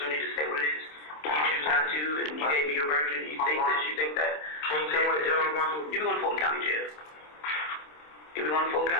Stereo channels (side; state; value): right; late; 26 ms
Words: to say what it is. You choose not to, and you gave me your version, and you think this, you think that. Can you tell me what jail I'm going to? You'll be going to Fulton County Jail. You'll be going to Fulton